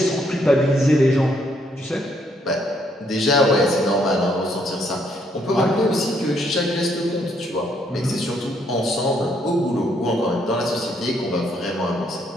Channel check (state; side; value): normal; both; correlation 0.71